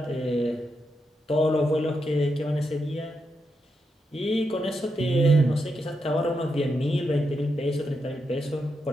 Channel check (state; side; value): normal; both; correlation 0.84